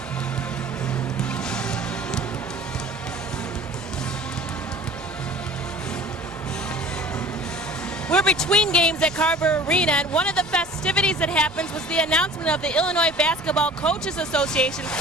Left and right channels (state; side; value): normal; both; correlation 0.45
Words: We're between games at Carver Arena, and one of the festivities that happens was the announcement of the Illinois Basketball Coaches Association